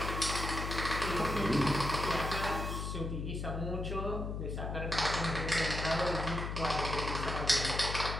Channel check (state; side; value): noise; left; hum, 3 dB below the sound